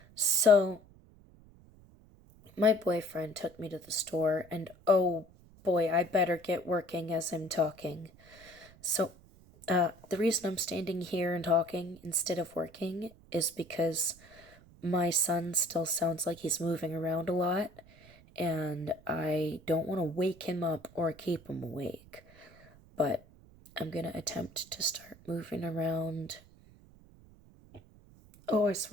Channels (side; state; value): right; noise; rumble, 25 dB below the sound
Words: So my boyfriend took me to the store, and oh boy, I better get working as I'm talking. So, the reason I'm standing here and talking instead of working is because my son still sounds like he's moving around a lot, and I don't want to wake him up or keep him awake. But I'm gonna attempt to start moving around. Oh, I